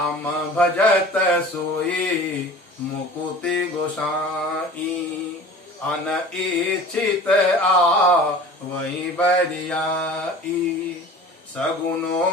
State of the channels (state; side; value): normal; both; correlation 0.41